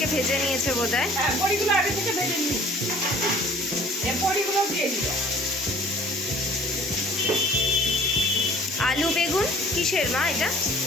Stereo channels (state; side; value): normal; both; correlation 0.51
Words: ভেজে নিয়েছে বোধহয়। হ্যাঁ, বড়িগুলো আগে থেকে ভেজে নিই, বড়িগুলো দিয়ে দিলাম। আলু বেগুন কিসের মা এটা?